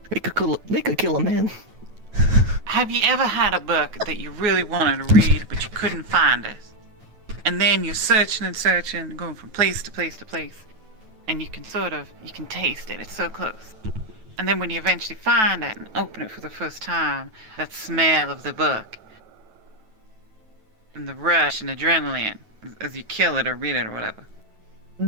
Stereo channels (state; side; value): late; left; 9.2 ms